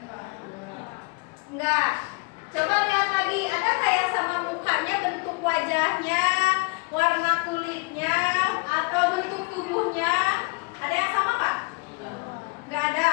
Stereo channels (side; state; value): right; quieter; 29.0 dB